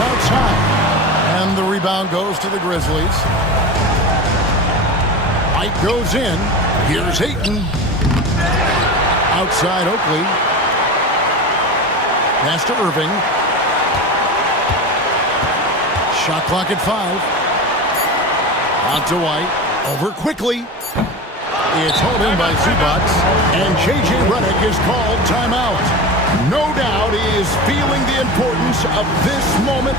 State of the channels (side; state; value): both; normal; correlation 0.28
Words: And the rebound goes to the Grizzlies. White goes in. Here's Ayton. Outside Oakley. Pass to Irving. Shot clock at 5. On to White. Over quickly. It's hauled in by Zubac. And J.J. Redick is called timeout. No doubt he is feeling the importance of this